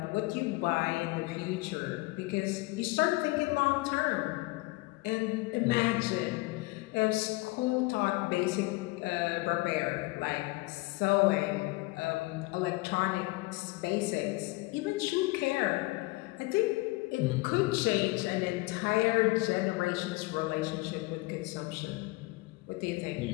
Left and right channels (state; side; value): quieter; right; 23.0 dB